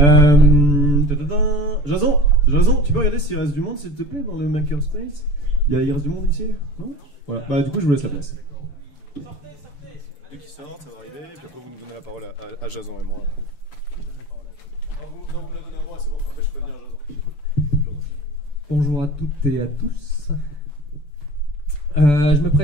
Jason, tu peux regarder s'il reste du monde s'il te plaît dans le makerspace. Il reste du monde ici? Non? Voilà, bah du coup je vous laisse la place. Dès qu'ils sortent, ça va arriver, et puis après vous nous donnez la parole à Jason et moi. Non, vous la donnez à moi, c'est bon, après je peux venir Jason. Bonjour à toutes et à tous. Je me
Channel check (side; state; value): right; late; 6.9 ms